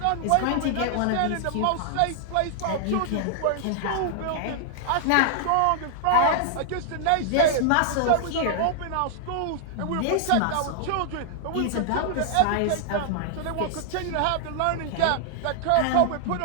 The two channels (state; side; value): different; both; correlation 0.00